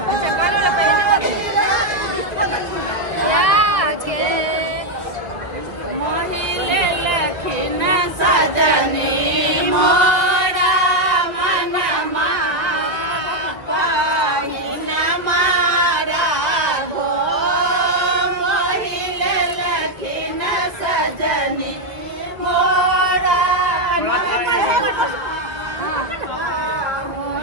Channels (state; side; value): late; left; 2.0 ms